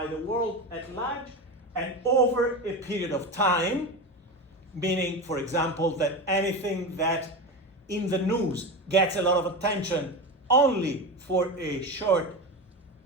the world at large and over a period of time, meaning, for example, that anything that in the news gets a lot of attention only for a short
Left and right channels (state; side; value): normal; both; correlation 0.22